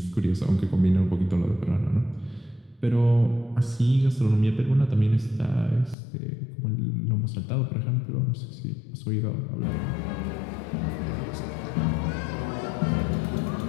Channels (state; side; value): drops out; right; at 6.0 s